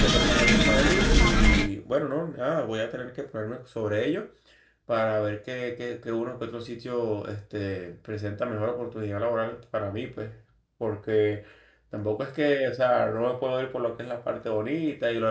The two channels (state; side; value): identical; both; correlation 1.00